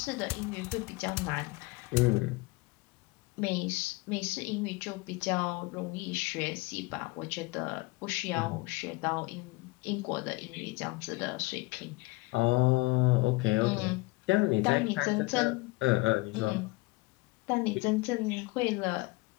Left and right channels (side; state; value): right; quieter; 23.4 dB